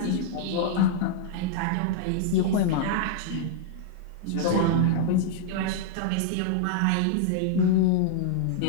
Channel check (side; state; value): both; different; correlation -0.01